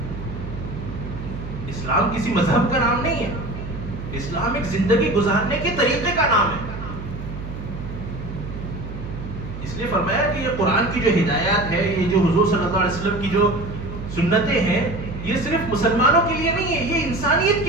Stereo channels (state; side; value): noise; right; hum, 9 dB below the sound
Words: اسلام کسی مذہب کا نام نہیں ہے، اسلام ایک زندگی گزارنے کے طریقے کا نام ہے. اس لیے فرمایا کہ یہ قرآن کی جو ہدایات ہے، یہ جو حضور صلی اللہ علیہ وسلم کی جو سنتیں ہیں، یہ صرف مسلمانوں کے لیے نہیں ہے، یہ انسانیت